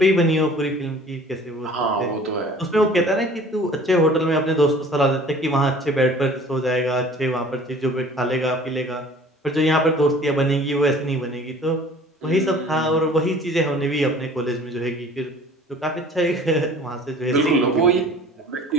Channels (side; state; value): both; normal; correlation 0.49